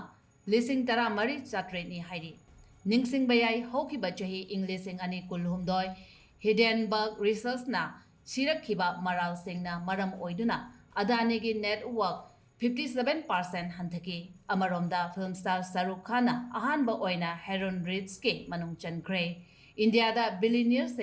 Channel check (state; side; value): identical; both; correlation 1.00